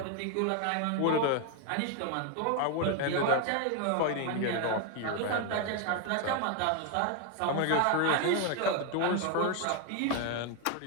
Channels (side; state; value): both; different; correlation 0.01